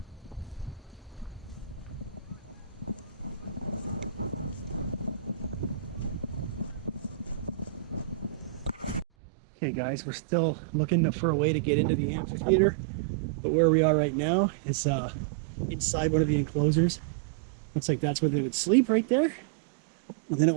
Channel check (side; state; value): left; drops out; at 9.1 s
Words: Okay guys, we're still looking for a way to get into the amphitheater, but where we are right now is inside one of the enclosures. Looks like that's where they would sleep right there. And they don't